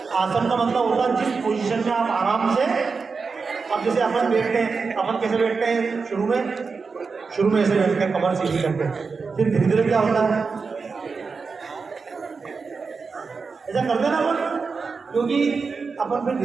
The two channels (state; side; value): quieter; left; 4.8 dB